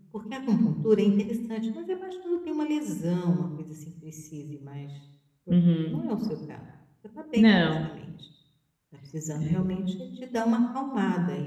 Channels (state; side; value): identical; both; correlation 1.00